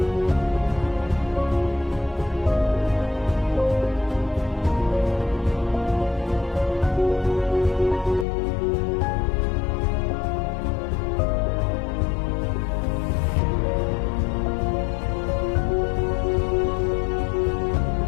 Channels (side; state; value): right; drops out; at 8.2 s